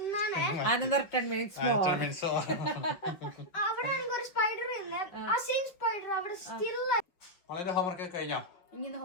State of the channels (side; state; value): right; late; 5.7 ms